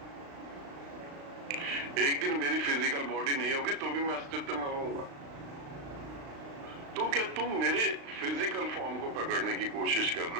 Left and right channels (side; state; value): left; late; 35 ms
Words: एक दिन मेरी फिजिकल बॉडी नहीं होगी तो भी मैं अस्तित्व में होऊंगा। तो क्या तुम मेरे फिजिकल फॉर्म को पकड़ने की कोशिश कर